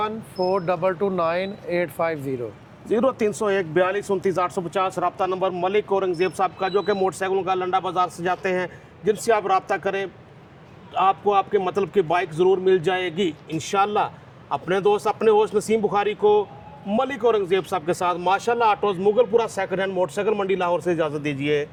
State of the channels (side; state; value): both; identical; correlation 1.00